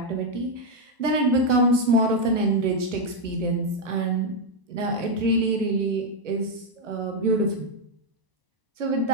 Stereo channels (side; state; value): left; late; 1.0 ms